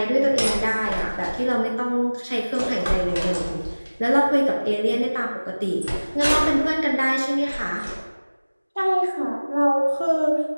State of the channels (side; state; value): both; inverted; correlation -1.00